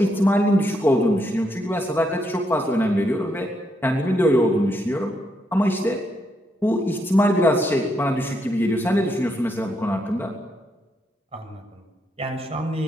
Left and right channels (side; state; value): both; normal; correlation 0.78